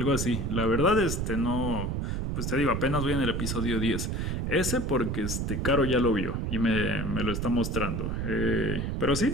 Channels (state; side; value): noise; right; rumble, 1 dB below the sound